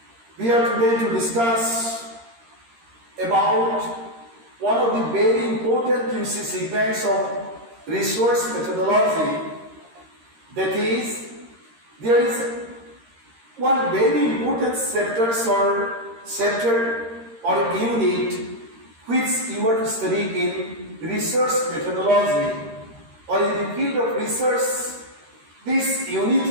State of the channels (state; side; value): late; left; 13 ms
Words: we are today to discuss about one of the very important segments of resource methodology. That is, there is one very important chapter or unit which you are to study in research methodology or in the field of research. This unit